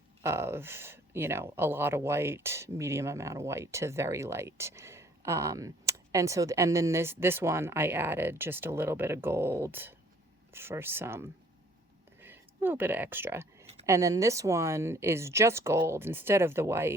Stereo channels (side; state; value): both; normal; correlation 0.58